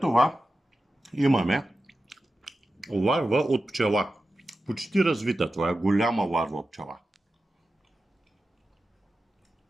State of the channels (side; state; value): both; normal; correlation 0.93